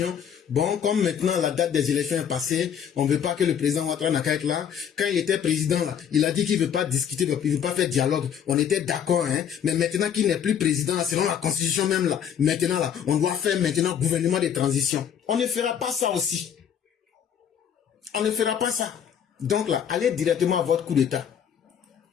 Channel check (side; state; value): right; quieter; 8.5 dB